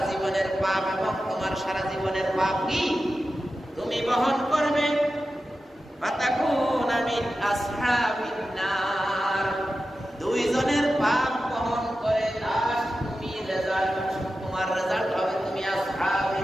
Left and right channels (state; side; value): normal; both; correlation 0.92